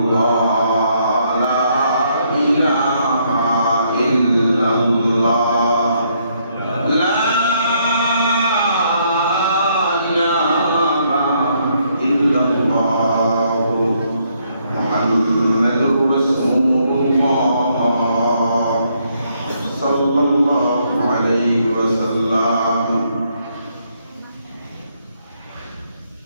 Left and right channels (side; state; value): both; inverted; correlation -0.72